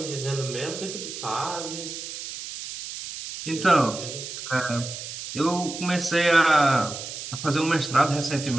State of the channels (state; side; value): noise; right; hiss, 9 dB below the sound